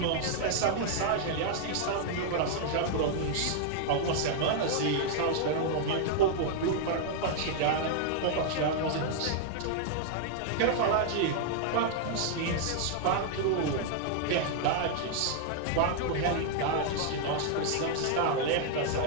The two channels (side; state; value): both; different; correlation -0.01